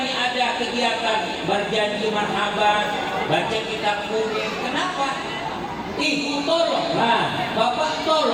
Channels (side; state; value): both; identical; correlation 1.00